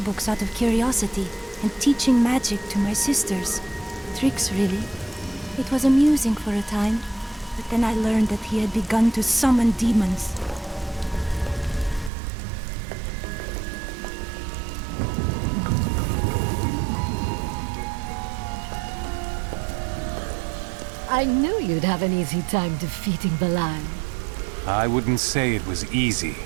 out of curiosity and teaching magic to my sisters. Tricks, really. It was amusing for a time, but then I learned that he had begun to summon demons. I knew you'd have an easy time defeating Belial. I wouldn't say it was easy.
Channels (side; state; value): left; drops out; at 12.1 s